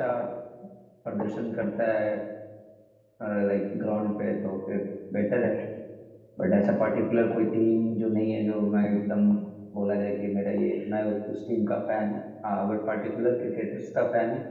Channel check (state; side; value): identical; both; correlation 1.00